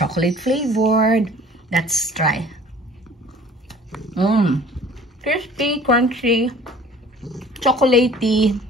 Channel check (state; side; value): normal; both; correlation 0.49